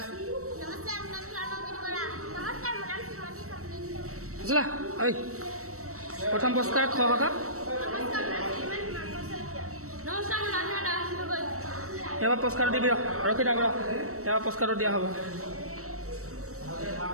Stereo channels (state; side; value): late; left; 0.64 ms